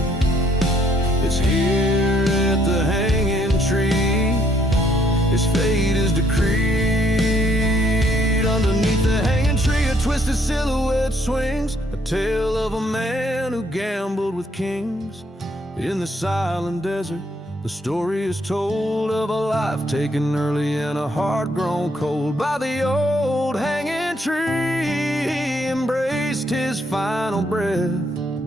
It's here at the hanging tree, his fate is decreed. Underneath the hanging tree a twisted silhouette swings, a tale of a man who gambled with kings. In the silent desert The story is told of a life taken early and a heart grown cold by the old hanging tree. He embraced his final breath,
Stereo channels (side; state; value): both; normal; correlation 0.69